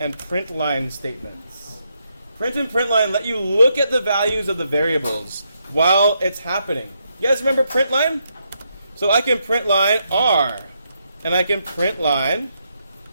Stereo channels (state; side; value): inverted; both; correlation -0.79